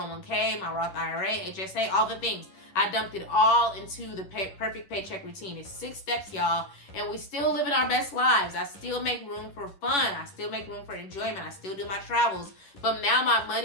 my Roth IRA, HSA, all the things. I dumped it all into the perfect paycheck routine. It's 6 steps, y'all, and we still living our best lives. I still make room for fun. I still make room for enjoyment. I still do my travels. But now my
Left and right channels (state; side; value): late; right; 11 ms